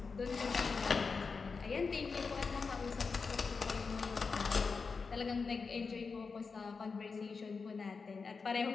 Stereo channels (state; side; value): quieter; right; 4.9 dB